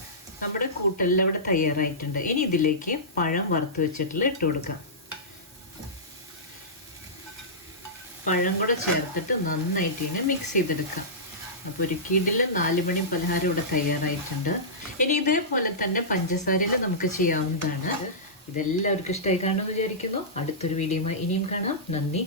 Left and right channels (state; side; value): normal; both; correlation -0.17